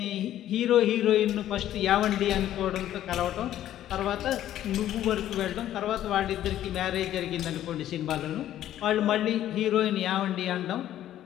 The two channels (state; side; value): quieter; right; 12.3 dB